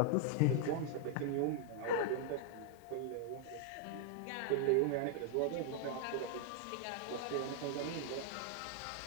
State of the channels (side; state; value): both; different; correlation 0.00